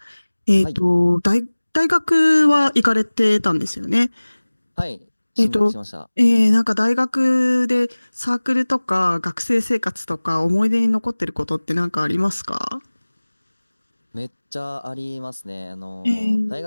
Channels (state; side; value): inverted; both; correlation -1.00